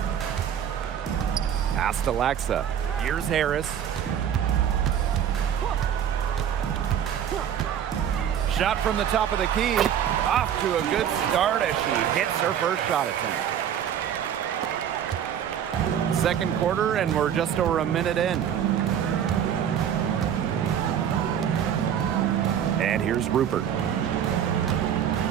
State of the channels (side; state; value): left; quieter; 9.2 dB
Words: Pass to Laxa. Here's Harris. Shot from the top of the key. Off to a good start as she hits her first shot attempt. Second quarter, and we're just over a minute in. And here's Rupert.